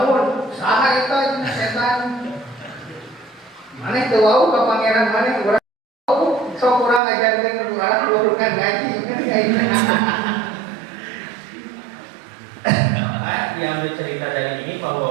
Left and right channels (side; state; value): left; drops out; at 7.0 s